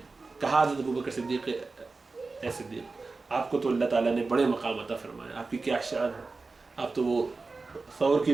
کہا حضرت ابو بکر صدیق اے صدیق, آپ کو تو اللہ تعالیٰ نے بڑے مقام عطا فرمایا, آپ کی کیا شان ہے, آپ تو وہ ثور کی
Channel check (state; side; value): quieter; left; 3.8 dB